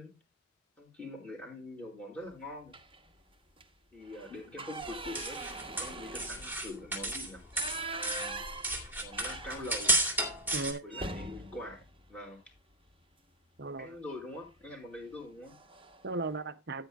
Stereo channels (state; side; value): normal; both; correlation 0.03